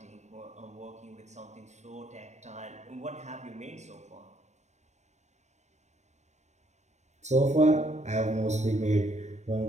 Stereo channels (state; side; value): late; left; 0.34 ms